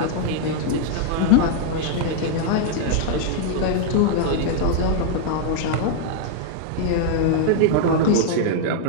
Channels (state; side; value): different; both; correlation -0.01